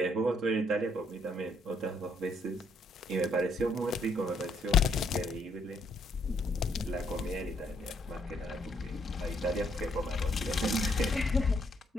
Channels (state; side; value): normal; both; correlation 0.70